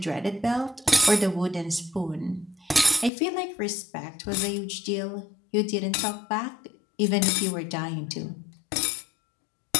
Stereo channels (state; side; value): drops out; right; at 3.1 s